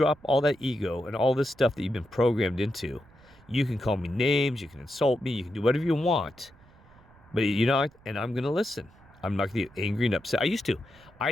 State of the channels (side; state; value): right; noise; rumble, 26 dB below the sound